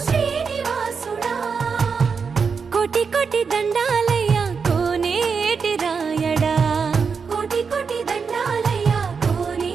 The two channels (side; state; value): left; quieter; 5.6 dB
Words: శ్రీనివాసుడా కోటి కోటి దండాలయ్య కోనేటి రాయడా కోటి కోటి దండాలయ్య